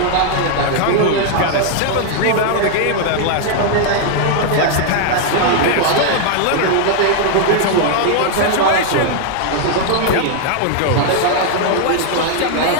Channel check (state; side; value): different; both; correlation 0.00